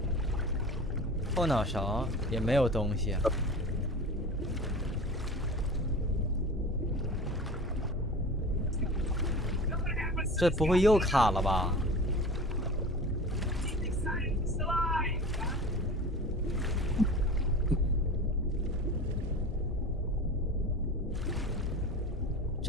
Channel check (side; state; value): both; normal; correlation 0.35